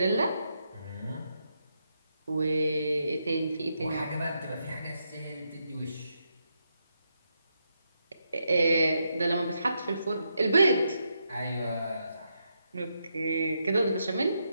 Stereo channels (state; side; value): inverted; both; correlation -0.81